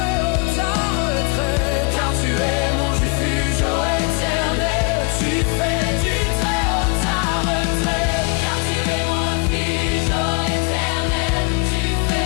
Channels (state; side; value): quieter; right; 32.5 dB